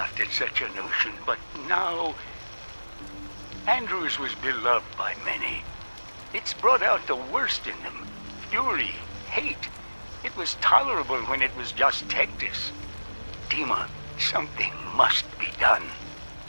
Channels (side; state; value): both; inverted; correlation -1.00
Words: at such a notion, but now... Andrews was beloved by many. It's brought out the worst in them. Fury, hate. It was tolerable when it was just Tectus. Dima, something must be done.